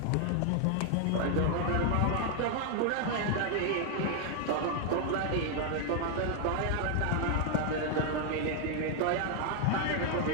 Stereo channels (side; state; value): both; different; correlation 0.00